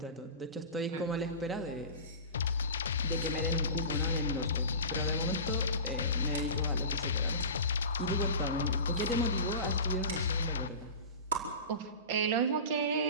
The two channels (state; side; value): inverted; both; correlation -0.32